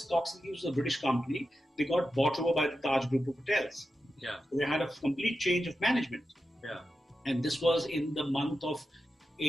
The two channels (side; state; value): both; normal; correlation 0.90